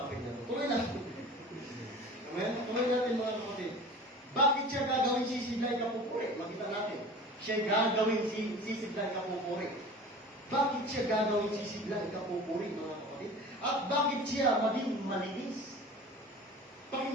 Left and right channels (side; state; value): both; normal; correlation 0.39